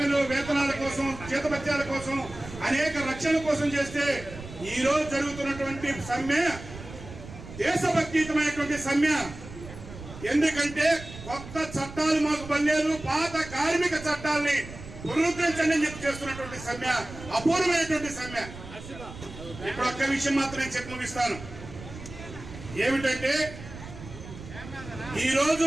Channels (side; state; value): right; noise; rumble, 14 dB below the sound